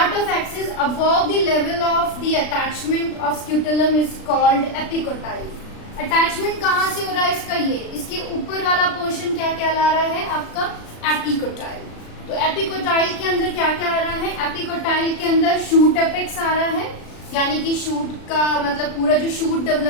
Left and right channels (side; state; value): right; late; 36 ms